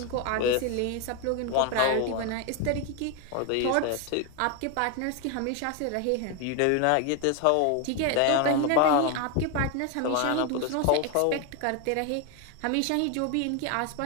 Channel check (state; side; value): different; both; correlation 0.01